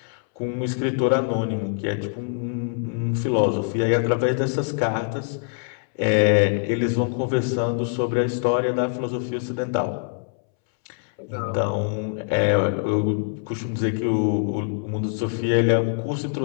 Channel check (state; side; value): silent; right; 62 dB below the other